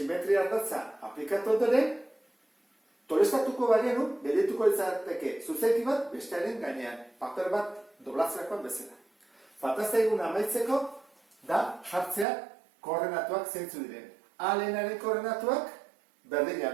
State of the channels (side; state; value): left; drops out; at 12.2 s